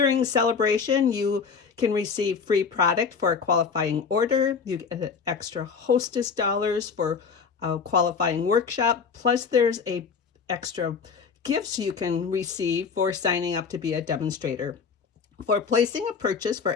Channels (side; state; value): right; quieter; 5.8 dB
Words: celebration, you can receive free product for a qualifying order. You get extra hostess dollars for a qualifying workshop. Plus, there's a extra gifts you can receive for signing up to be a demonstrator. For placing a purchase